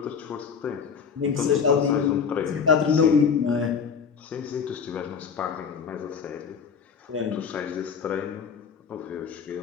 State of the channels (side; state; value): right; quieter; 6.4 dB